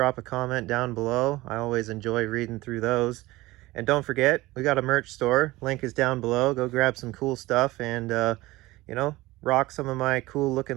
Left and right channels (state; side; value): quieter; left; 19.4 dB